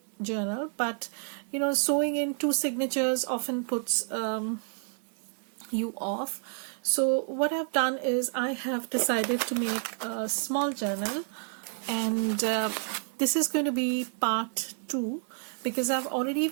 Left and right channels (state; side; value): silent; left; 58 dB below the other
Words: journal, but sewing in two signatures often puts you off. So what I've done is I have decided to make a small journal, and this is going to be part 2, because I've already